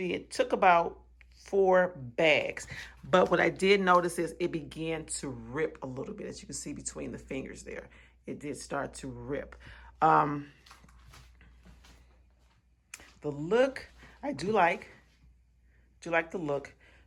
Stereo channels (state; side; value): identical; both; correlation 1.00